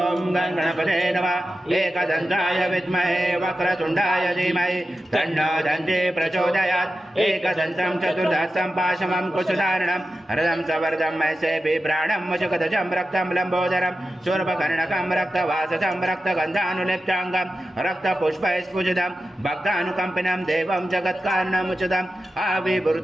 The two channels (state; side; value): normal; both; correlation 0.92